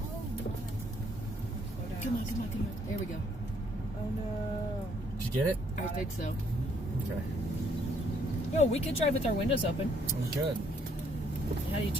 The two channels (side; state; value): both; normal; correlation 0.68